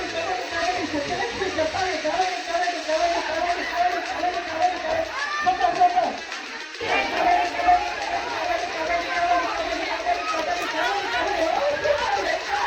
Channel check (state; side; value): identical; both; correlation 1.00